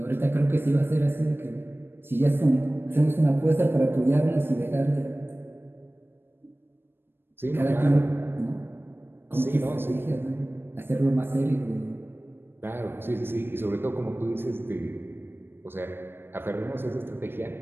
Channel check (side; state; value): left; late; 0.10 ms